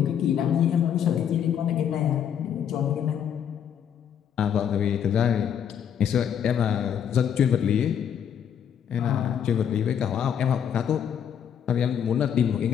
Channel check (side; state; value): right; quieter; 8.7 dB